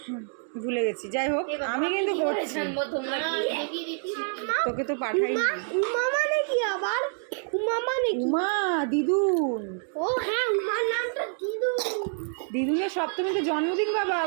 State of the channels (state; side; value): silent; left; 60 dB below the other